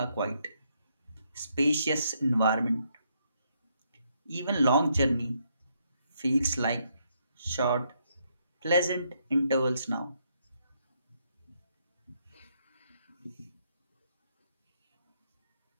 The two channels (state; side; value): inverted; both; correlation -0.75